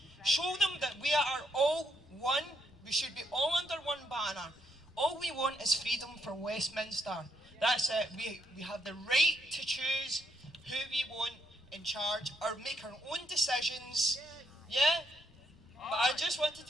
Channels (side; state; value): both; normal; correlation 0.76